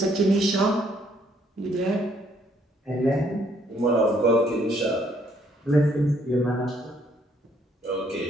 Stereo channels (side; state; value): both; normal; correlation 0.67